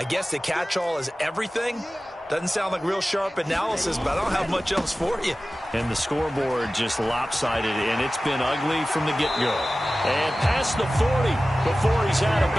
guess the catch-all is everything. Doesn't sound like real sharp analysis, but I don't have much else for you. And the scoreboard just lopsided, and it's been ugly from the get-go. And past the 40 before he's out of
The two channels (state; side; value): normal; both; correlation 0.96